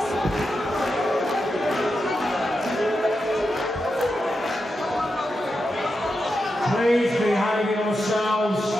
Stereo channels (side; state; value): both; normal; correlation 0.88